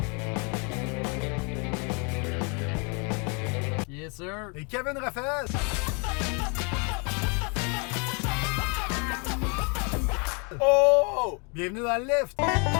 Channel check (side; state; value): right; quieter; 34.3 dB